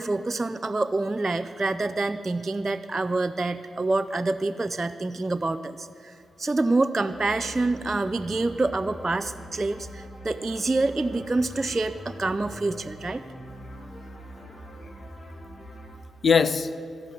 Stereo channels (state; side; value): normal; both; correlation 0.92